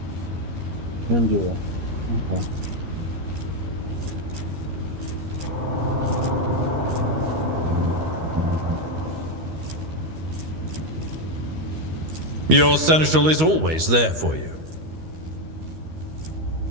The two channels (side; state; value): left; late; 13 ms